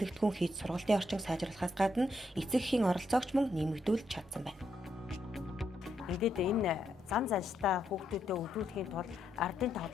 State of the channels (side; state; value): both; normal; correlation 0.79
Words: хийж сургалтын орчин сайжруулахаас гадна эцэг эхийн оролцоогч мөн нэмэгдүүлж чадсан байна. Ингээд энэ зам занштай хүүхдүүдэд өдөртхийн тулд ардын